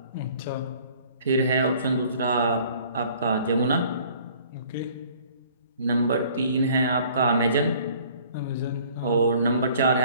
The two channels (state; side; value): inverted; both; correlation -0.55